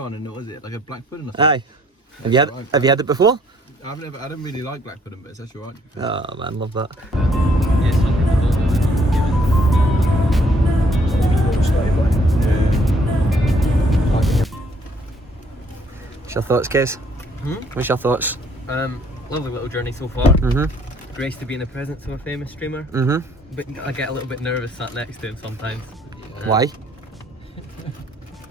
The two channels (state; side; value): normal; both; correlation 0.64